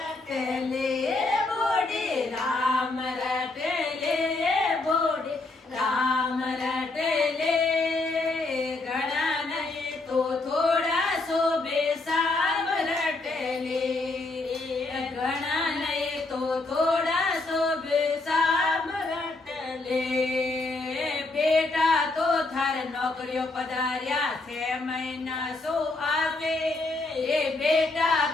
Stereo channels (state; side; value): quieter; right; 3.2 dB